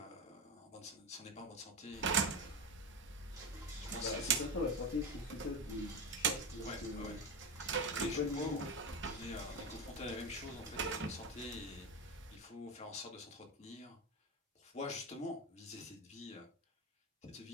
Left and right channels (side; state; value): both; normal; correlation 0.18